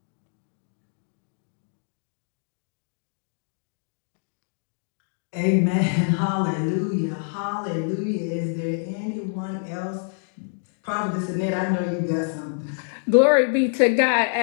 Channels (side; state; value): right; silent; digital silence